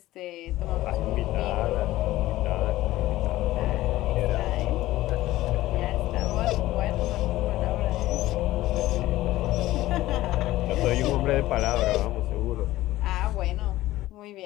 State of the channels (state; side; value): quieter; right; 16.2 dB